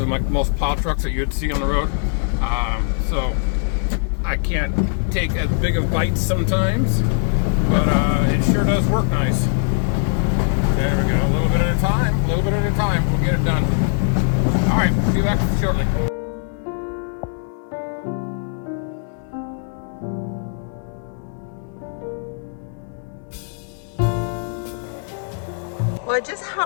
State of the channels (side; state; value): right; silent; 61 dB below the other